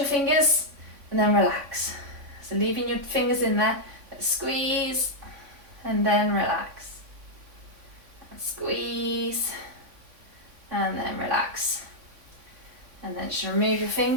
fingers, and then relax. So leaving your fingers in there, squeeze, and then relax. And squeeze, and then relax. And then just remove your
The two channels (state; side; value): late; left; 3.5 ms